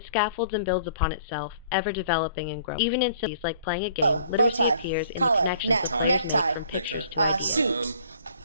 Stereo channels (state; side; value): inverted; both; correlation -0.55